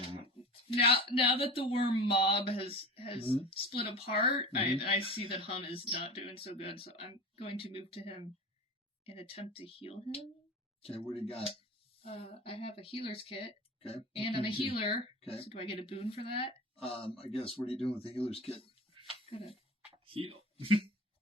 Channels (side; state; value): both; normal; correlation 0.33